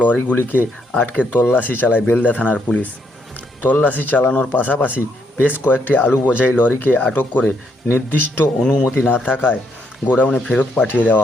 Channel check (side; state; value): both; normal; correlation 0.74